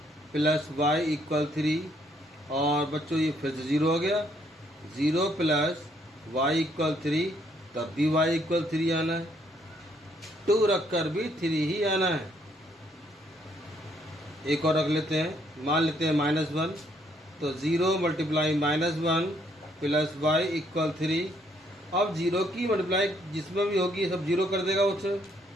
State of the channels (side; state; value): both; normal; correlation 0.69